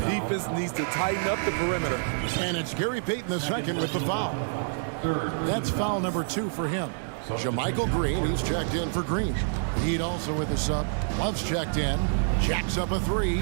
needs to tighten up the perimeter. And it's Gary Payton II with the foul. That's foul number 2 for him. Jermichael Green, he's checked in for Green. Heat also with the sub. Love's checked in. Jacks up a three,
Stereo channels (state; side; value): silent; left; digital silence